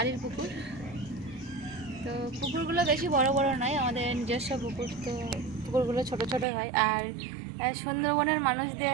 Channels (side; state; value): left; drops out; at 6.5 s